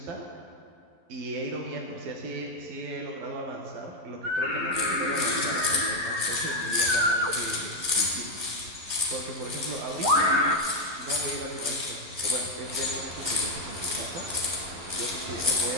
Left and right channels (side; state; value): left; late; 11 ms